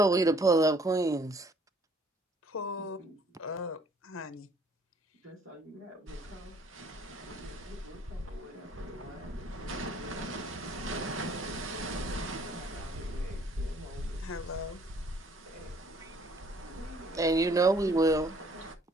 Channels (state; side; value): normal; both; correlation 0.60